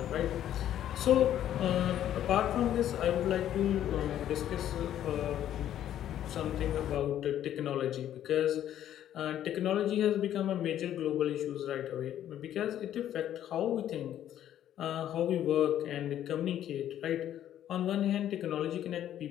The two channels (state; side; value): quieter; right; 11.3 dB